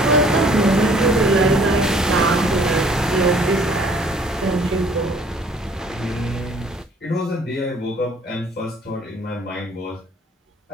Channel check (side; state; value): both; normal; correlation 0.57